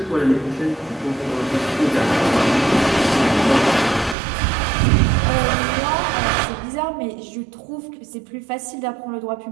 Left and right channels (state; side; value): drops out; left; at 4.2 s